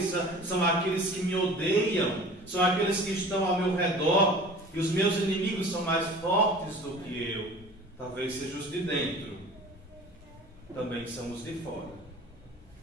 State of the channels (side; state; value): both; normal; correlation 0.42